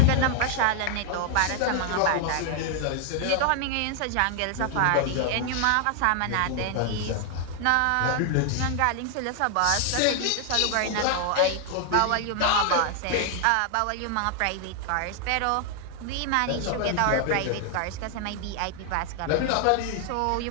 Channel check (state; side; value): different; both; correlation 0.00